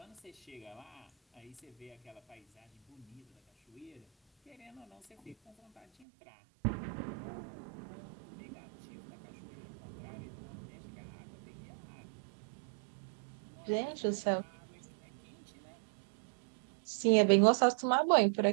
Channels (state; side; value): drops out; left; at 5.9 s